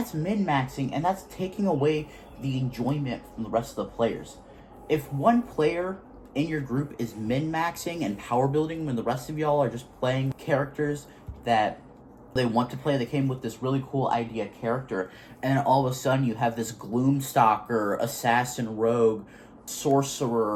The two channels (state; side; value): identical; both; correlation 1.00